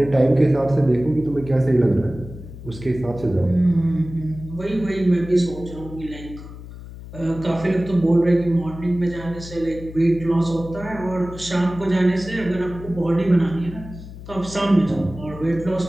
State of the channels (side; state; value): left; noise; hum, 14 dB below the sound